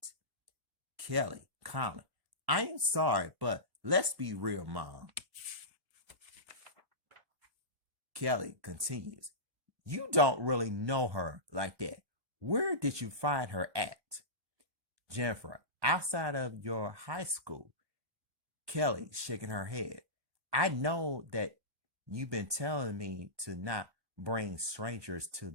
Kelly, calmly. I am sorry, but let's be real, Mom. Kelly continues. You don't really know her like that. Where did you find her at? Jennifer, outside of your high school. Kelly, shaking her head. I know that you've been telling me to not bring strangers to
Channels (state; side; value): late; left; 1.1 ms